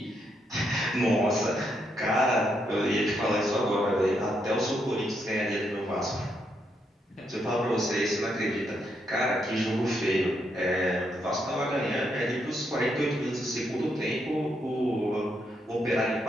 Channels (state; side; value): normal; both; correlation 0.78